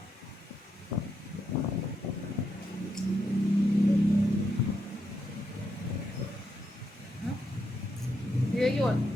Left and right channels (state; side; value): normal; both; correlation 0.80